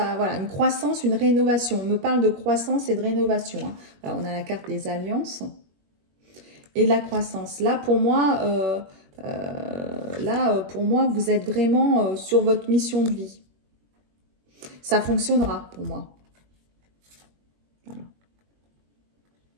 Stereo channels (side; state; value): left; late; 21 ms